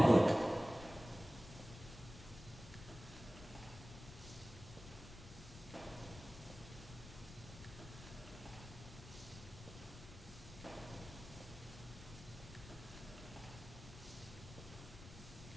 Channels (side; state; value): left; noise; rumble, 14 dB below the sound